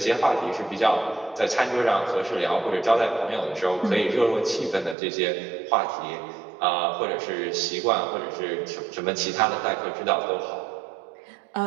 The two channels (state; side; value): drops out; left; at 5.0 s